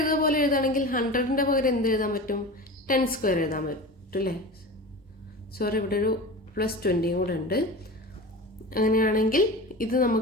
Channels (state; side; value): normal; both; correlation 0.31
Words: പോലെ എഴുതുകയാണെങ്കിൽ 100ൻ്റെ പകരം എന്ത് എഴുതാൻ പറ്റും? 10 സ്ക്വയർ എഴുതാൻ പറ്റും അല്ലേ? സോറി, ഇവിടെ ഒരു +20 കൂടെ ഉണ്ട്. അങ്ങനെയാണെങ്കിൽ ഇത്